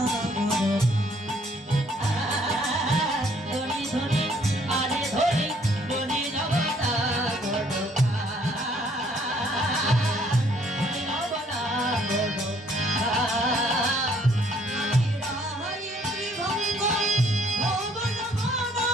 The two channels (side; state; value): both; normal; correlation 0.63